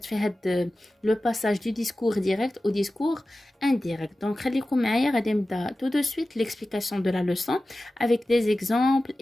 في هاد لو باساج دو ديسكور ديريكت او ديسكور indirect. Donc, خليكم معايا غادي نبدا tout de suite l'explication de la leçon avec des exemples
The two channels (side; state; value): both; normal; correlation 0.95